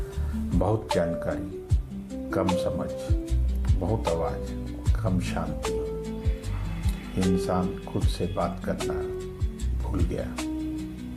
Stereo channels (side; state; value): both; identical; correlation 1.00